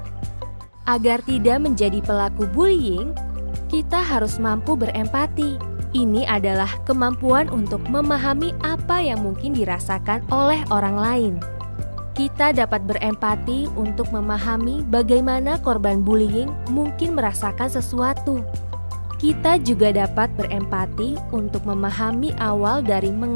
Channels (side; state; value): both; inverted; correlation -1.00